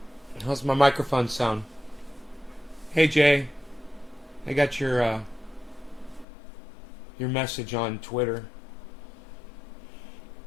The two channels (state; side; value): drops out; right; at 6.2 s